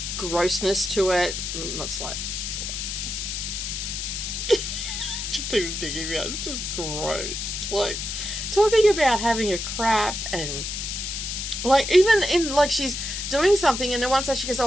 grossness to it. Not slight. Just even thinking about it, it's just gross. Like, talking about having a crap, and like, even in, like, she's doing something and then once she goes,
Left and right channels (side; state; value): left; noise; hiss, 4 dB below the sound